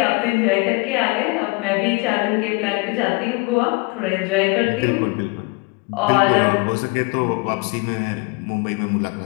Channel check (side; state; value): right; quieter; 28.0 dB